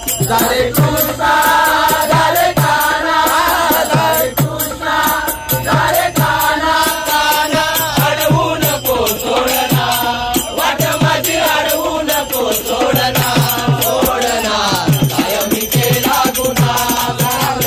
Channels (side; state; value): both; identical; correlation 1.00